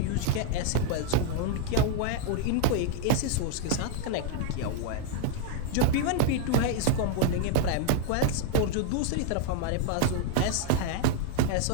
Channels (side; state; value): both; different; correlation 0.00